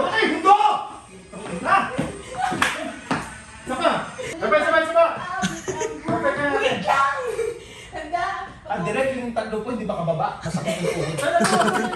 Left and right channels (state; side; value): identical; both; correlation 1.00